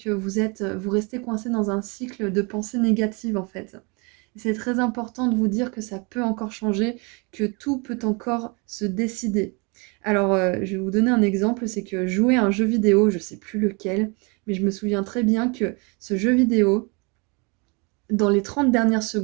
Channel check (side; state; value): left; quieter; 30.6 dB